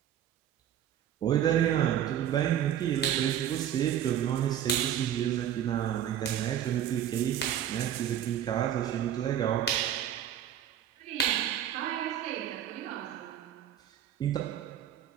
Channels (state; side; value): quieter; left; 10.4 dB